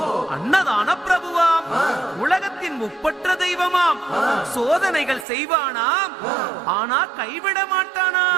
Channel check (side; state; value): left; drops out; at 5.2 s